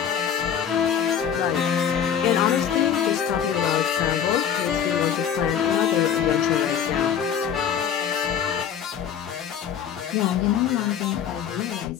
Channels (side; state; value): right; quieter; 8.4 dB